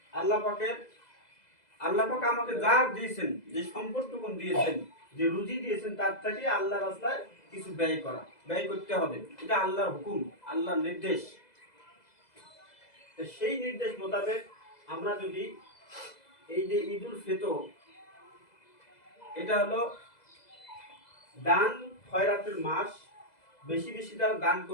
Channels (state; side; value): late; right; 2.0 ms